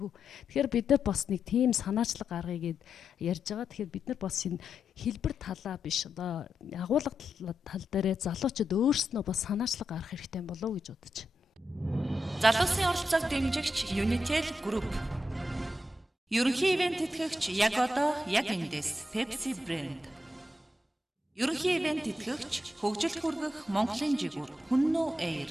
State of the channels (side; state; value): both; normal; correlation 0.85